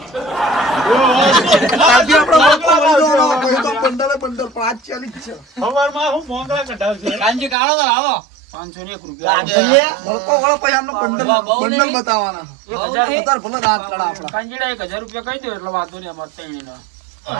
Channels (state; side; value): drops out; left; at 7.6 s